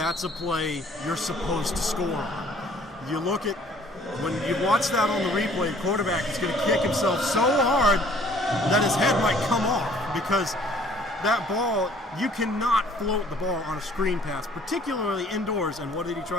a play you're supposed to score on. You look at, when you watch that on the replay, the quarterback is going to kick himself so hard that his head might come off, because that ball, you cannot float the ball on a screen pass, particularly indoors. And what did he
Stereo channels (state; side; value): normal; both; correlation 0.56